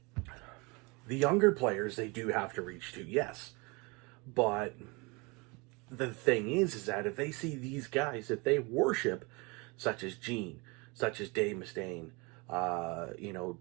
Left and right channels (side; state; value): left; quieter; 27.9 dB